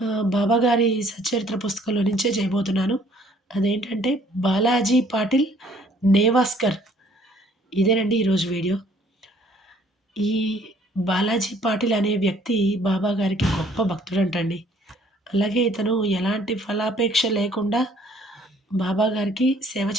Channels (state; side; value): normal; both; correlation 0.60